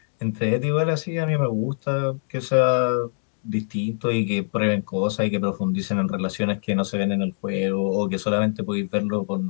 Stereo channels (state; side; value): silent; right; digital silence